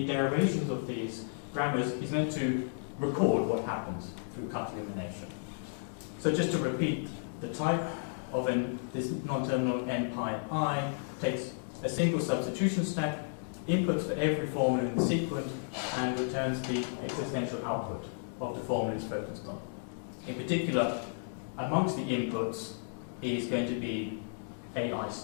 derivations of these grammars is meant to record what happens through cut-elimination. So just to repeat, the type of this non-terminal n pi I takes a single substitution stack, inputs for every formula in the sequence, and returns the existential output of the formula it's focused on. In particular, amongst the inputs is going to be AI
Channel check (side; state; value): right; silent; digital silence